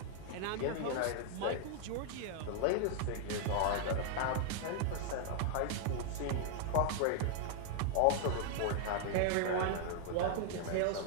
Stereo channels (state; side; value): different; both; correlation 0.00